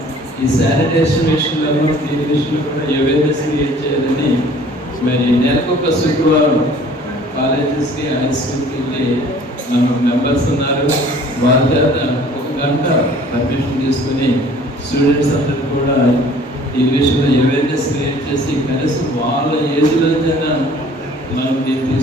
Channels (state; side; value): normal; both; correlation 0.52